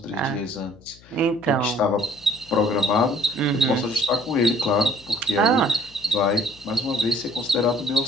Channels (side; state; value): left; noise; hum, 25 dB below the sound